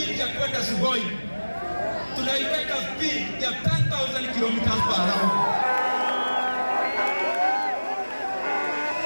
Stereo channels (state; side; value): inverted; both; correlation -1.00